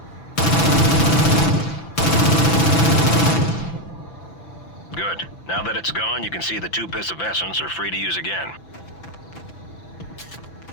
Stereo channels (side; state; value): right; late; 5.9 ms